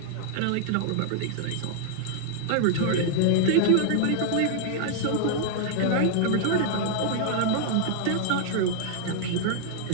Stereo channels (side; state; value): both; different; correlation -0.01